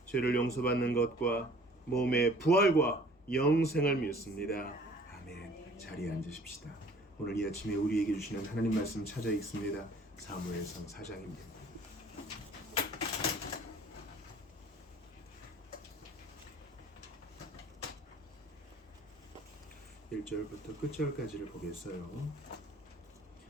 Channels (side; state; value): both; normal; correlation 0.52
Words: 죄를 용서받는 것과 몸의 부활과 영생을 믿습니다. 아멘. 자리에 앉으십시다. 오늘 이 아침에 우리에게 주시는 하나님 말씀 찾아 읽습니다. 사무엘상 4장입니다. 1절부터 끝절까지를 보겠어요.